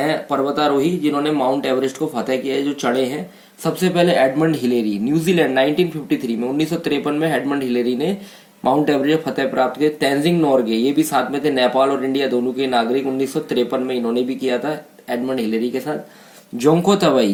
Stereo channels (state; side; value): identical; both; correlation 1.00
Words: पर्वतारोही जिन्होंने माउंट एवरेस्ट को फतेह किया है, जो चढ़े हैं. सबसे पहले एडमंड हिलेरी, न्यूजीलैंड, 1953 में, 1953 में एडमंड हिलेरी ने माउंट एवरेस्ट फतेह प्राप्त किया. तेंजिंग नोर्गे, ये भी साथ में थे, नेपाल और इंडिया दोनों के नागरिक. 1953 में इन्होंने भी किया था एडमंड हिलेरी के साथ. जोंको तबई,